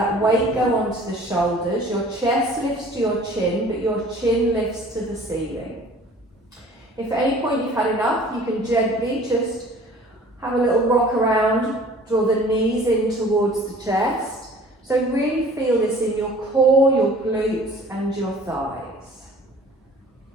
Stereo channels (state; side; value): normal; both; correlation 0.49